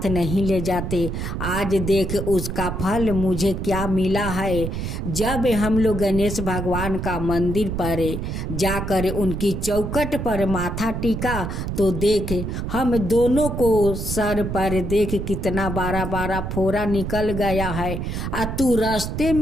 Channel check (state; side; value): noise; right; rumble, 4 dB below the sound